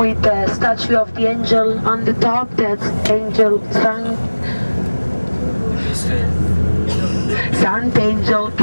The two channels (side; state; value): both; inverted; correlation -1.00